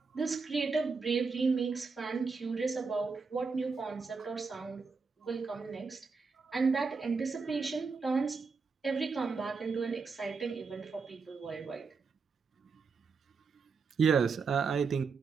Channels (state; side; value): quieter; left; 4.9 dB